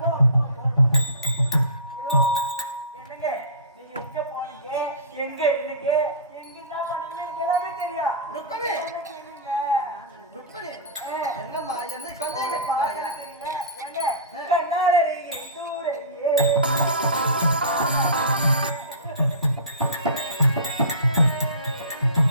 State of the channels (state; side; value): inverted; both; correlation -0.31